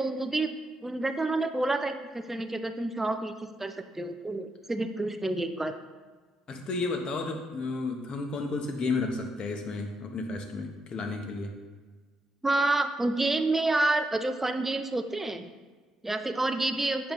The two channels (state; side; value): normal; both; correlation 0.82